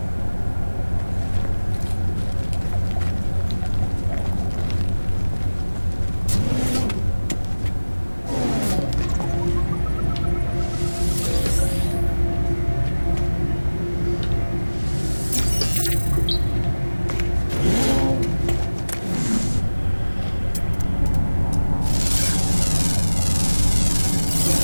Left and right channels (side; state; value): both; inverted; correlation -1.00